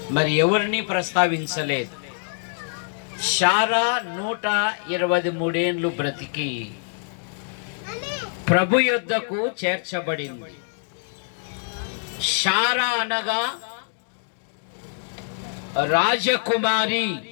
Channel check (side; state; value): right; silent; digital silence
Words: మరి ఎవరిని ప్రస్తావించలేదు. శారా 123 ఏళ్ళు బ్రతికి ప్రభు యొద్దకు చేర్చబడింది. శారా అనగా రాజకుమారి.